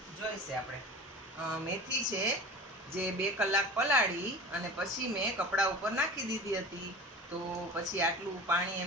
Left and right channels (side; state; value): both; normal; correlation 0.36